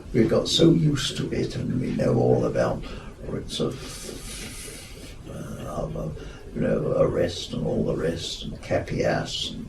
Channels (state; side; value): identical; both; correlation 1.00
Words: we got so used to it, and we know all about writs of arrest and all the rest, and capias